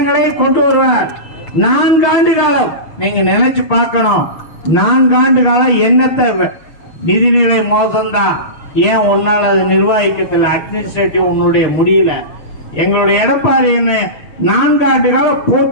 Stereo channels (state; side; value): late; right; 6.9 ms